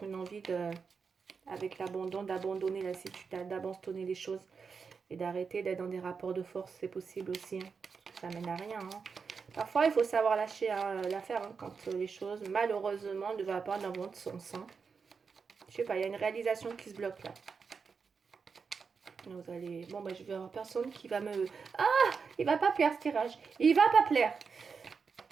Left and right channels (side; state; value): left; quieter; 5.5 dB